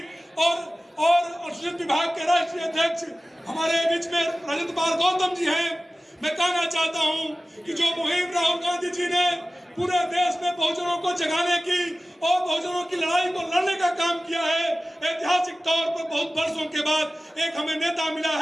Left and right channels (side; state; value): both; normal; correlation 0.96